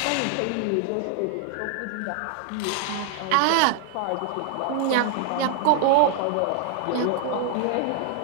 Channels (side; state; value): both; different; correlation 0.00